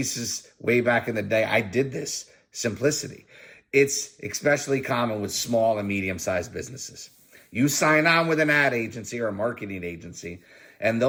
way back in the day, I did this. Simplicity. It's especially common with small and medium-sized businesses. You sign on with an ad agency or a marketing agency, and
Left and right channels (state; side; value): identical; both; correlation 1.00